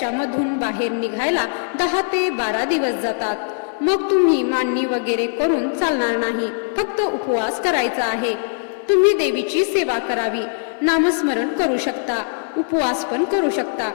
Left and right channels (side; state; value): right; silent; 56 dB below the other